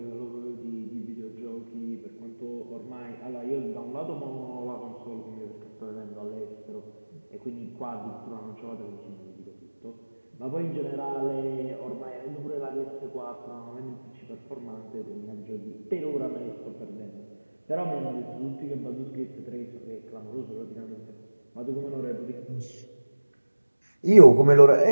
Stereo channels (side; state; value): both; inverted; correlation -1.00